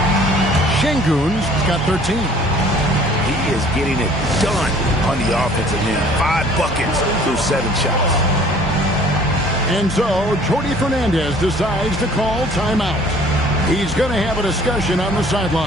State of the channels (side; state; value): both; normal; correlation 0.53